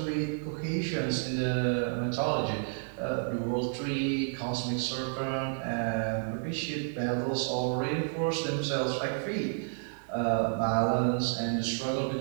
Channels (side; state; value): left; silent; digital silence